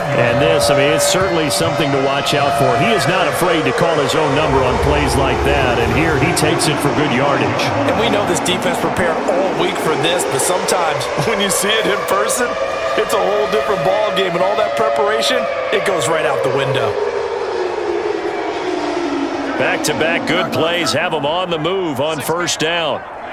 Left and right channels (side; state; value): both; identical; correlation 1.00